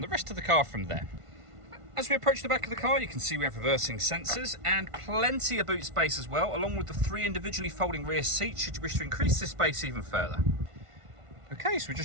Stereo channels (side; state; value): left; late; 1.5 ms